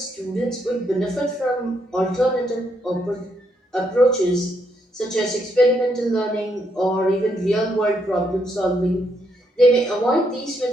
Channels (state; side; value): normal; both; correlation 0.76